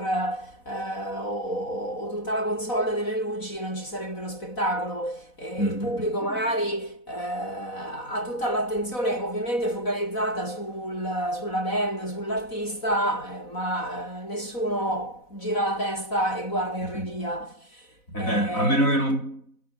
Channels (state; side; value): late; right; 4.0 ms